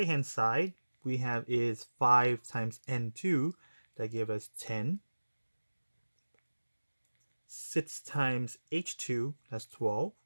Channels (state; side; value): inverted; both; correlation -1.00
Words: hand side, we have is 5 times N2, that gave us 10. 6 times H2, that's 12.